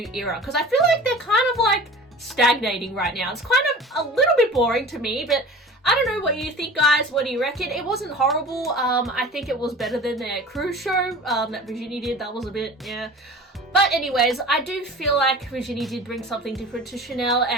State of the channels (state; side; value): normal; both; correlation 0.40